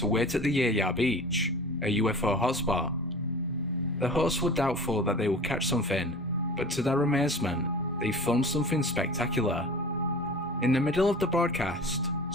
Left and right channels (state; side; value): normal; both; correlation 0.39